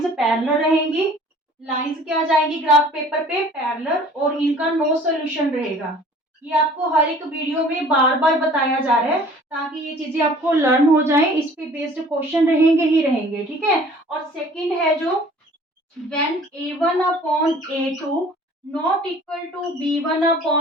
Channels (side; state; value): both; normal; correlation 0.50